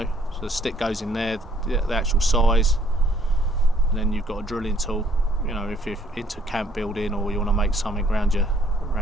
So the stick goes in there, the actual size, and then you've got a drilling tool. If you're into camp building or you want to make something around your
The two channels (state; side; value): normal; both; correlation 0.64